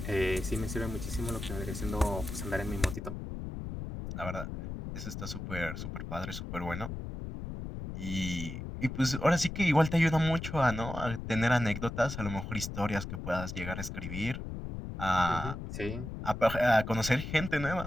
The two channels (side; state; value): left; noise; rumble, 7 dB below the sound